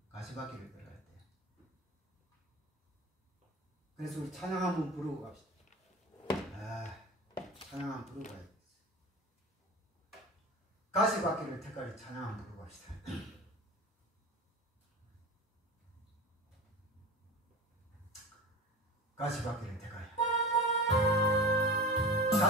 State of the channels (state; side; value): normal; both; correlation 0.32